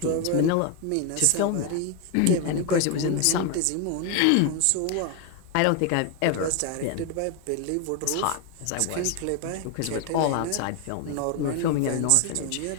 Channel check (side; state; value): both; different; correlation 0.01